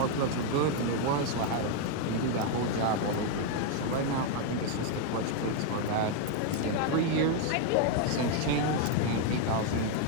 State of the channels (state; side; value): different; both; correlation 0.01